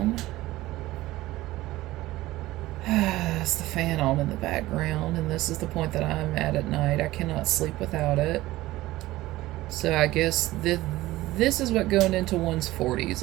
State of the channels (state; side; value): quieter; left; 17.4 dB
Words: It's the fan on in the background, and this is the point that I'm at night. I cannot sleep without it. So I guess this is what going into one's 40s